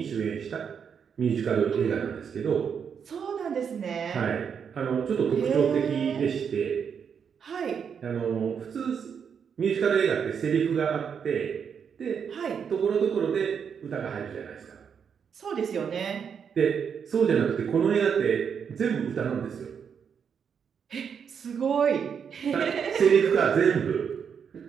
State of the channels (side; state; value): left; quieter; 7.1 dB